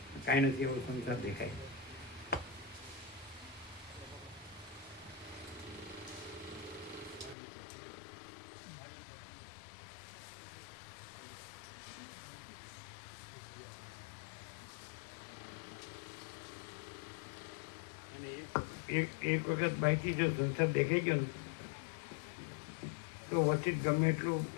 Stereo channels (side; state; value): right; drops out; at 7.4 s